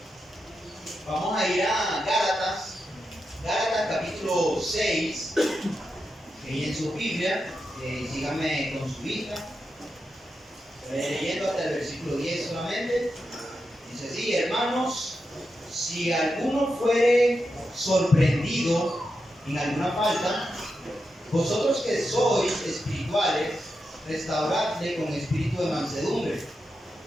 Vamos a ir a Gálatas capítulo 6, ahí en su Biblia, síganme con su vista, leyendo hasta el versículo 10 solamente. Dice así: hermanos, si alguno fuere sorprendido en alguna falta, vosotros que sois espirituales, restauradle con espíritu de mansedumbre,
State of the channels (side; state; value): both; normal; correlation 0.87